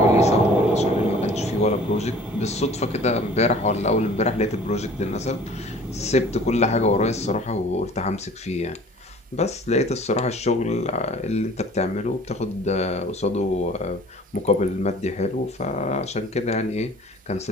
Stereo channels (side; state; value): both; normal; correlation 0.49